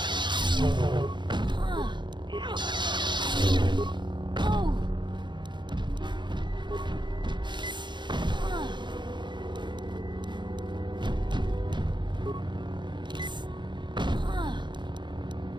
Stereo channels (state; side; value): late; left; 0.22 ms